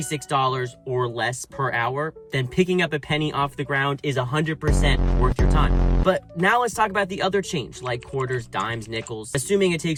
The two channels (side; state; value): both; identical; correlation 1.00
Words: or less per hour, then picking up a penny off the ground is 100% worth your time. But now let's talk about the other change, like quarters, dimes, nickels. Assuming it